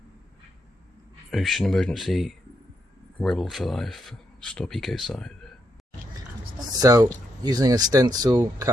Ocean emergency, rebel for life, stop ecocide. So using a stencil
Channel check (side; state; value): both; normal; correlation 0.79